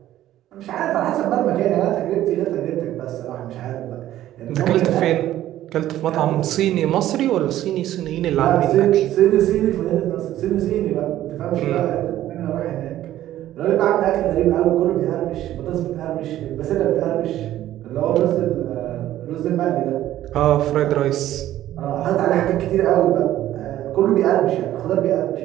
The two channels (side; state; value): left; quieter; 13.3 dB